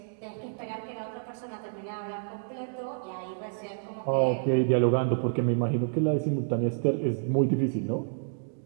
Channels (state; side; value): silent; left; digital silence